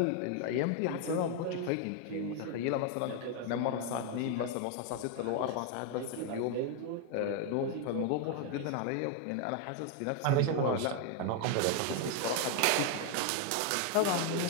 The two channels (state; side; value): different; both; correlation 0.01